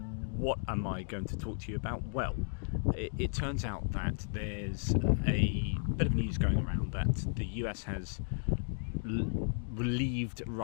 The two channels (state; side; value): silent; right; digital silence